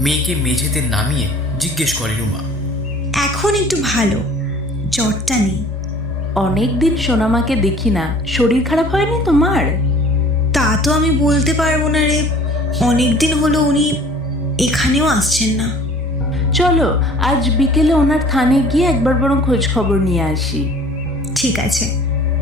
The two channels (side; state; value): both; normal; correlation 0.49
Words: মেঝেতে নামিয়ে জিজ্ঞেস করে রুমা। এখন একটু ভালো, জ্বরটা নেই। অনেক দিন সোনামাকে দেখি না, শরীর খারাপ হয়নি তোমার? তা তো আমি বলতে পারবো না রে, অনেক দিন হলো উনি এখানেও আসছেন না। চলো আজ বিকেলে ওনার থানে গিয়ে একবার বরং খোঁজ খবর নিয়ে আসি। ঠিক আছে।